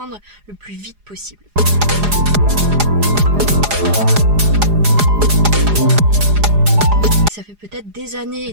le plus vite possible. Ça fait peut-être des années et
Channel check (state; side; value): late; left; 4.9 ms